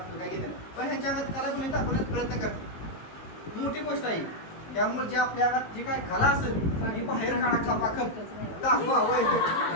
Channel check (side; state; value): right; late; 19 ms